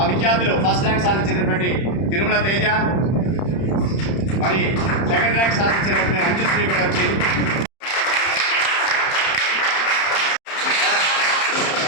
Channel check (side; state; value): right; late; 31 ms